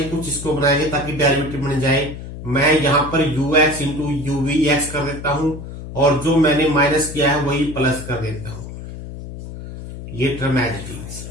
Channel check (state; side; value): noise; left; hum, 11 dB below the sound